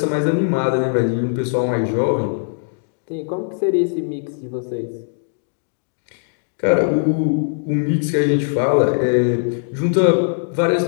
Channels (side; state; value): right; silent; digital silence